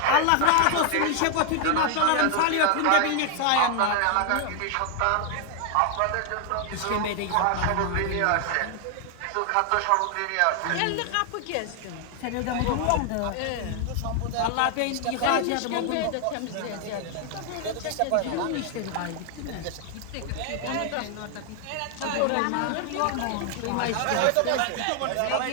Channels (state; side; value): different; both; correlation 0.00